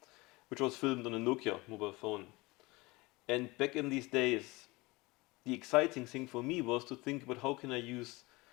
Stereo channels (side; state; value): right; quieter; 23.0 dB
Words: which was filmed on a Nokia mobile phone. And back in these days, the exciting thing for me was to think about how can I use